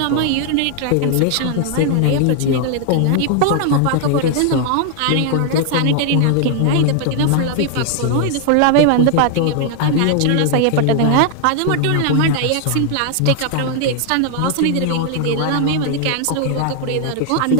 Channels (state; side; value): different; both; correlation 0.00